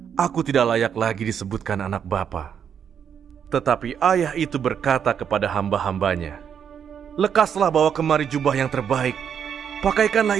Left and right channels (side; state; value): left; quieter; 8.0 dB